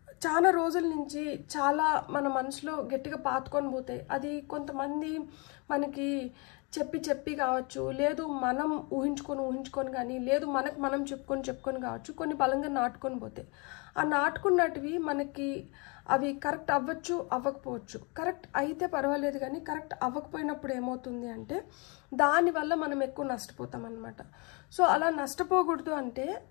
చాలా రోజుల నుంచి చాలా మన మనసులో గట్టిగా పాతుకొని పోతాయి. అది కొంతమంది మనకి చెప్పి కావచ్చు, లేదు మనం ఊహించుకొని కానీ, లేదు మనకు మనం చెప్పుకొని కావచ్చు, కొన్ని బలంగా నాటుకొని పోతాయి. ఆ నాటుకున్నటివి మనకి అవి కరెక్ట్ అవ్వచ్చు, అవ్వకపోవచ్చు. కరెక్ట్ అయితే పర్వాలేదు, కానీ కరెక్ట్ అవ్వకపోయినప్పుడు ఏమవుతుంది అంటే దానివల్ల మనం ఎక్కువ నష్టపోతాం అన్నమాట. సో అలా నష్టపోకూడదు అంటే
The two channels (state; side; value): quieter; right; 30.8 dB